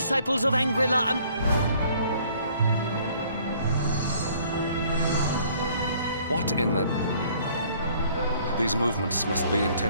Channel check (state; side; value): inverted; both; correlation -0.59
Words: of Angrila What in the... These movements must be